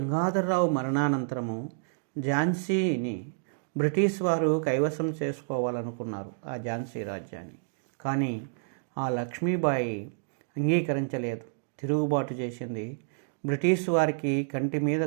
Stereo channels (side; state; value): left; silent; digital silence